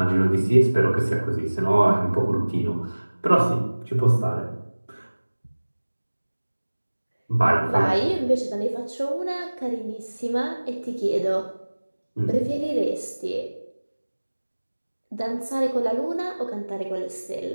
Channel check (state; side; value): inverted; both; correlation -1.00